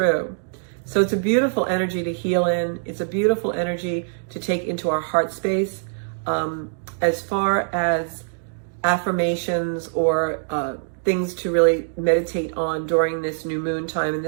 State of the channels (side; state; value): left; silent; digital silence